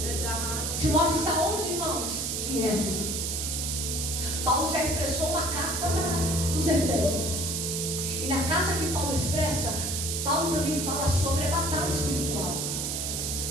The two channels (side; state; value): right; noise; hiss, 1 dB below the sound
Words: Timóteo está onde, irmãos? Em Éfeso. Paulo já expressou uma carta para os Efésios. E na carta que Paulo expressa, Paulo também fala sobre a batalha espiritual.